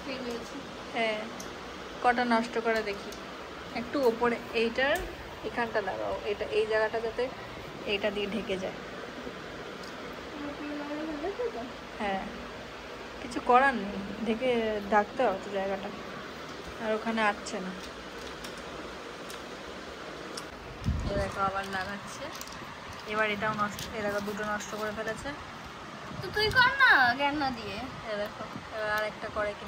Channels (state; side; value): identical; both; correlation 1.00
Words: হ্যাঁ, কটা নষ্ট করে দেখি। একটু ওপরে এইটার এখানটা লাগাও, এটা এই জায়গাটা যাতে এইটা দিয়ে ঢেকে যায়। হ্যাঁ, কিছু করার নেই, ঢেকে ঢাকতে হবে তো জায়গাটা, আর ওখানে আসছে না। দেখো আবার লাগাচ্ছে, এবার এটাও নষ্ট, এ দেখো দুটো নষ্ট করে ফেলেছে। তো তুই কর না, জ্ঞান না দিয়ে। এ দেখো এবার আর একটা করে